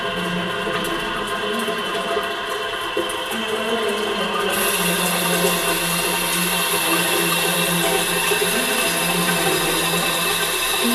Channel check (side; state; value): both; identical; correlation 1.00